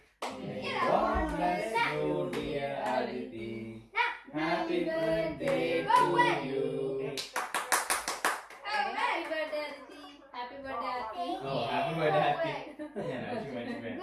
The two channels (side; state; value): both; identical; correlation 1.00